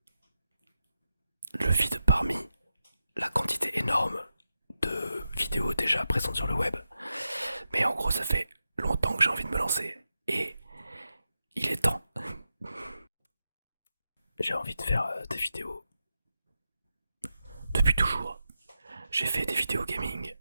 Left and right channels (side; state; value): both; inverted; correlation -0.89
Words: parmi la quantité énorme de vidéos déjà présentes sur le web. Mais en gros ça fait longtemps que j'ai envie de me lancer et il est temps. J'ai envie de faire des vidéos depuis toujours. J'ai fait des vidéos gaming,